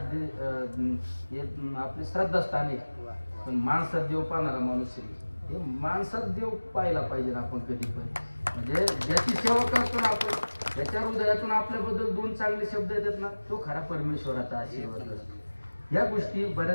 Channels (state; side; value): inverted; both; correlation -1.00